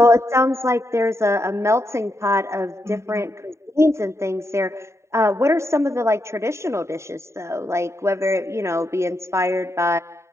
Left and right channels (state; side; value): late; left; 0.14 ms